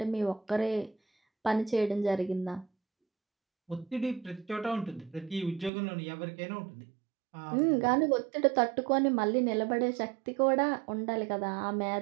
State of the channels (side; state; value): left; drops out; at 5.7 s